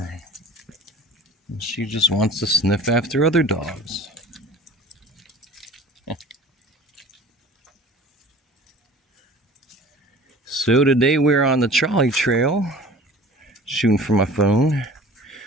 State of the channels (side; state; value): both; normal; correlation 0.44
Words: And she just wants to sniff after other dogs. So today we're on the trolley trail. Shooting from my phone.